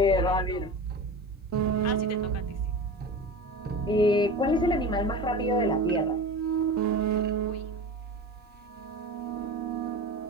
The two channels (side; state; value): both; normal; correlation 0.31